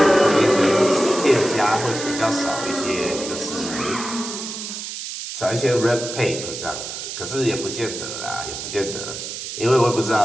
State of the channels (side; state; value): right; noise; hiss, 7 dB below the sound